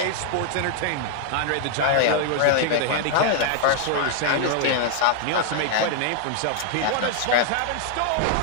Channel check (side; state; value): both; different; correlation 0.00